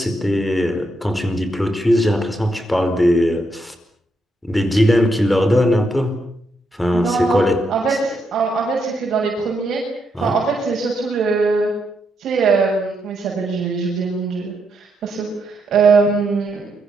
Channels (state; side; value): normal; both; correlation 0.80